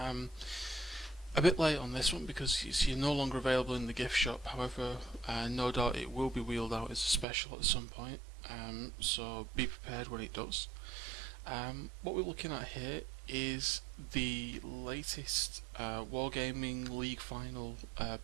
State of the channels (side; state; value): left; drops out; at 7.2 s